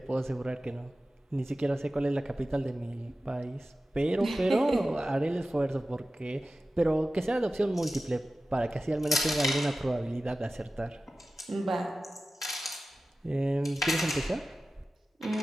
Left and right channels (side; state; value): both; normal; correlation 0.95